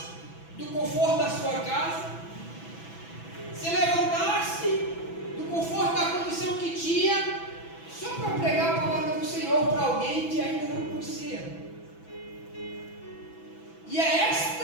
do conforto da sua casa, se levantasse do conforto da condição que tinha, só para pregar a palavra do Senhor para alguém que ainda não conhecia. E é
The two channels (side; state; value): right; late; 6.0 ms